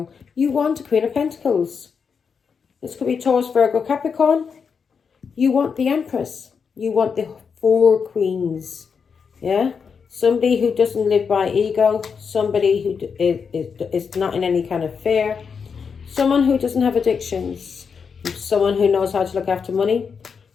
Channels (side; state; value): right; quieter; 6.0 dB